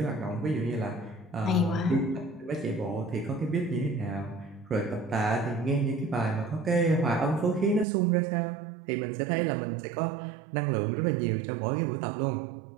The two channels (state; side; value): drops out; left; at 7.9 s